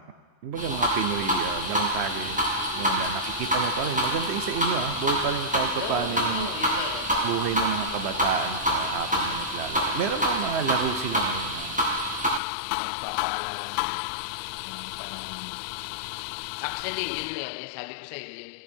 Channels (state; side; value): drops out; right; at 12.4 s